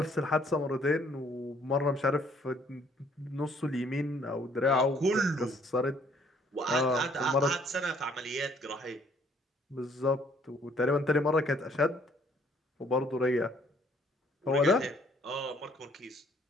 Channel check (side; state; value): both; normal; correlation 0.63